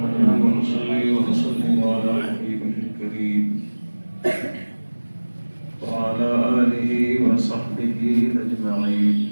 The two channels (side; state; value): both; inverted; correlation -1.00